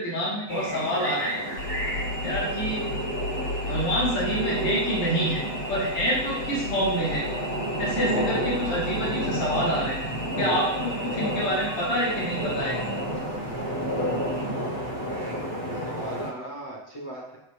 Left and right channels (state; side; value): late; right; 7.9 ms